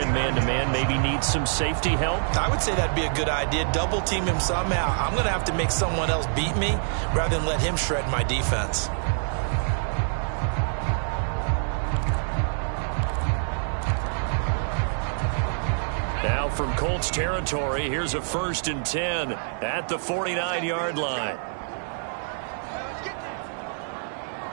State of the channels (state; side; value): silent; left; digital silence